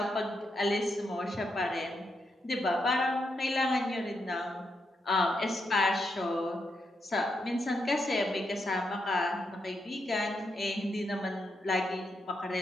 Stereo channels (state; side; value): normal; both; correlation 0.82